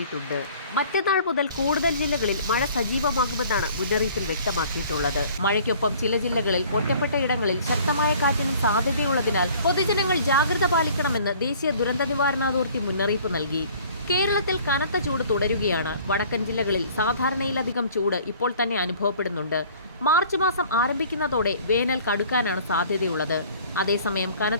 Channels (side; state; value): both; inverted; correlation -0.52